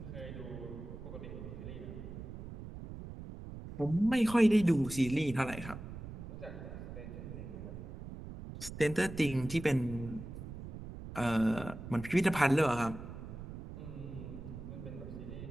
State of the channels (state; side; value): noise; right; rumble, 10 dB below the sound